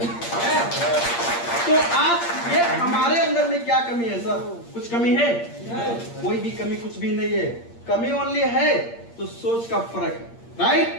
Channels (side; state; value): right; late; 8.6 ms